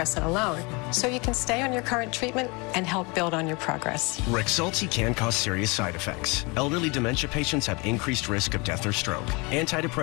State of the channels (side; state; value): right; quieter; 28.2 dB